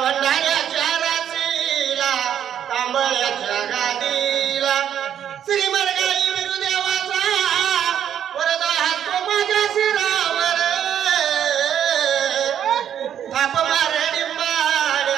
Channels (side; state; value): left; quieter; 9.6 dB